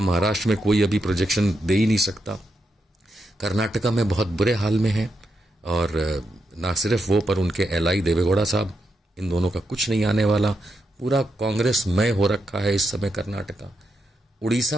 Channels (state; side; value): normal; both; correlation 0.84